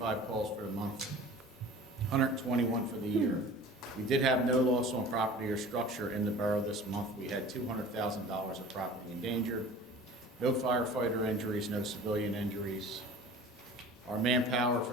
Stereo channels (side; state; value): both; normal; correlation 0.42